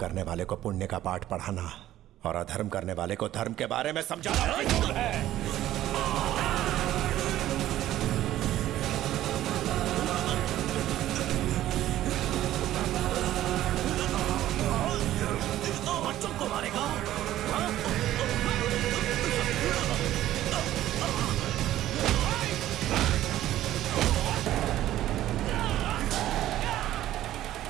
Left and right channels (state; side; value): quieter; left; 13.6 dB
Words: वाले को पुण्य का पाठ पढ़ाना और अधर्म करने वाले को धर्म के बारे में समझाना मंजूर है। बच्चों को मारेगा?